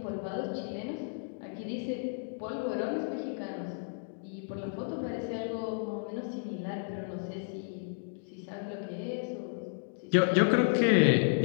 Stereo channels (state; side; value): silent; right; digital silence